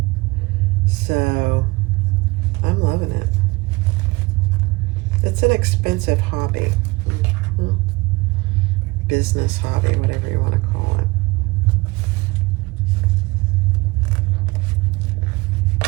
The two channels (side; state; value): left; quieter; 23.6 dB